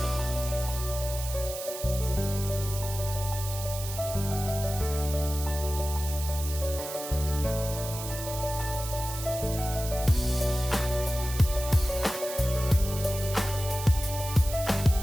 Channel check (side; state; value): right; noise; hiss, 9 dB below the sound